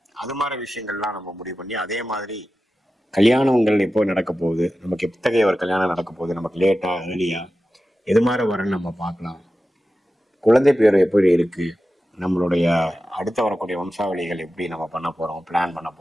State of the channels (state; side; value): normal; both; correlation 0.93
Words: அது மாதிரி விஷயங்கள்லாம் நம்ம முடிவு பண்ணி அதே மாதிரி கல்யாணங்கள் எப்போ நடக்க போகுது, நமக்கு எத்தகைய ஒரு கல்யாணம் நடக்க போகுது, நமக்கு லேட்டா ஏர்லியா, எது மாதிரி வரன்னு நம்ம பார்க்கலாம், குழந்தை பேர் எப்படி இருக்கு, நம்மளுடைய அடுத்த வரக்கூடிய வம்சாவளிகள் எப்படி நம்ம பண்ண போறோம், பிளான் பண்ண